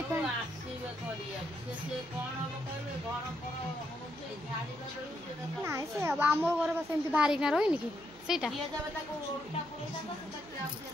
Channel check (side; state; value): right; noise; hum, 21 dB below the sound